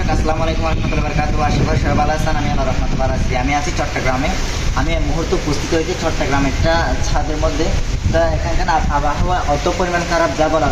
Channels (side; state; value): both; identical; correlation 1.00